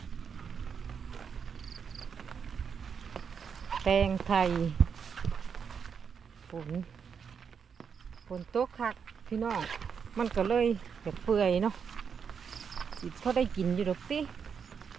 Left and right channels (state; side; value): quieter; left; 6.7 dB